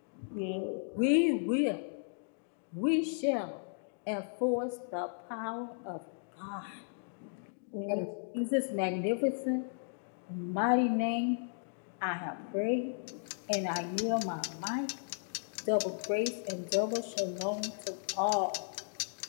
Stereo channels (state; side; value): silent; right; digital silence